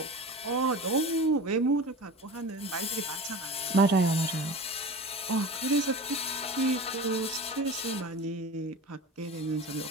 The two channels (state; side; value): normal; both; correlation 0.34